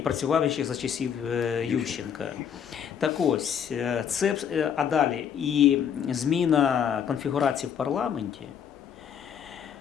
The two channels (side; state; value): right; quieter; 8.2 dB